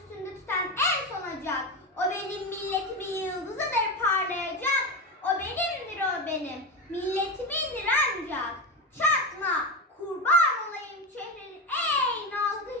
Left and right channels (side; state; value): both; normal; correlation 0.18